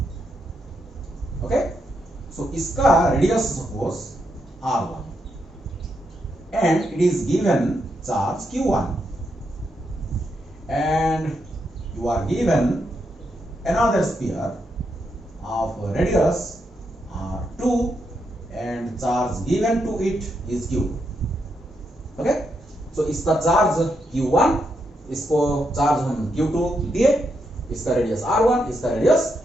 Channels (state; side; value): normal; both; correlation 0.81